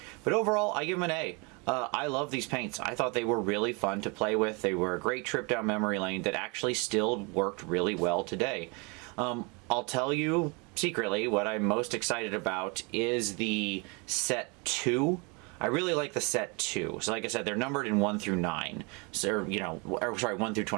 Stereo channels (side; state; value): left; quieter; 30.6 dB